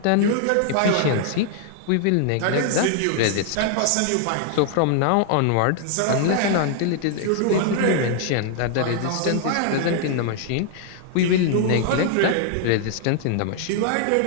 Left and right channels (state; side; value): different; both; correlation 0.00